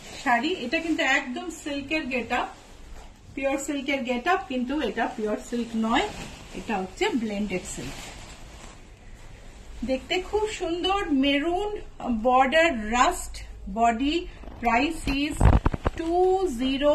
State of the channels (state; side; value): identical; both; correlation 1.00